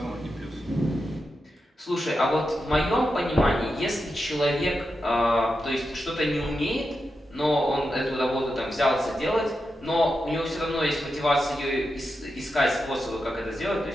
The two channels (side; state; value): both; normal; correlation 0.88